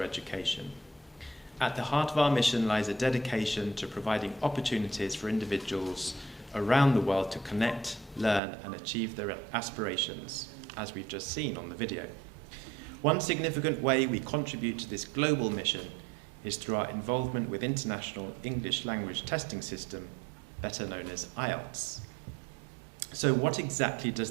education. At the heart of our mission lies a dedication to providing opportunities for individuals around the world to connect, learn and achieve their aspirations, as we've just seen on the video. One significant way we contribute to this global mission is through our involvement with International English Language Testing System, better known as IELTS. So what exactly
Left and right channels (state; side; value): drops out; left; at 8.4 s